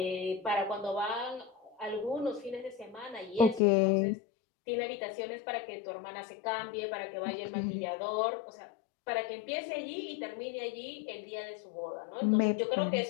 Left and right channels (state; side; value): drops out; right; at 3.6 s